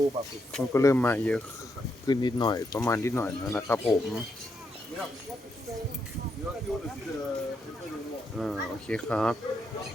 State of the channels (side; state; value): both; normal; correlation 0.81